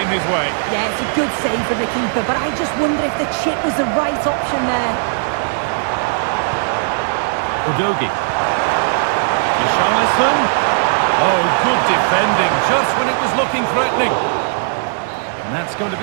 his way. Yeah, it's a good save from the keeper, but I just wonder if the chip was the right option there. Udogi. Richarlison. Oh, good defending, just when it was looking threatening. And that's going to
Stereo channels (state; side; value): silent; left; digital silence